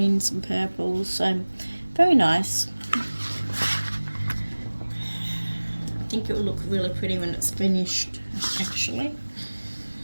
and purples. So very nice. I think it will look really pretty when it's finished, actually.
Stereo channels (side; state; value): both; inverted; correlation -1.00